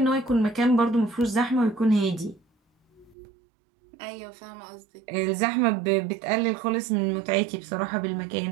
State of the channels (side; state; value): left; drops out; at 3.2 s